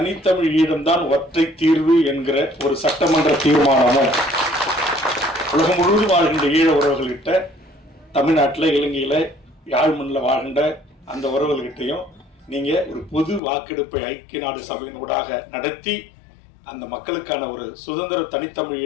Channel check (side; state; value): right; drops out; at 13.4 s